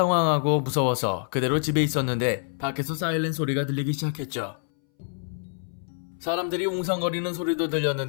무서워서 그대로 집에 있었는데 밖에서 사이렌 소리가 들리기 시작했죠. 사람들이 웅성거리는 소리도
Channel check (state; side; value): silent; right; 61 dB below the other